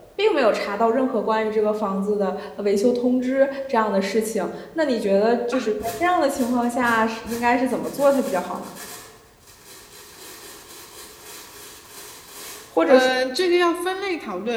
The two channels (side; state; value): both; identical; correlation 1.00